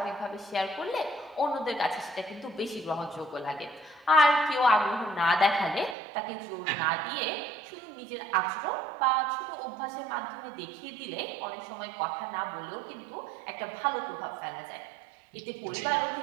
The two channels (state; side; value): drops out; left; at 6.0 s